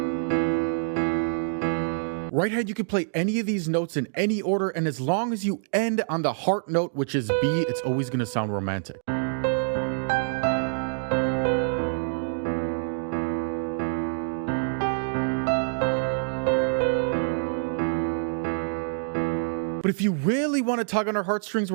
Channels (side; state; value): left; silent; digital silence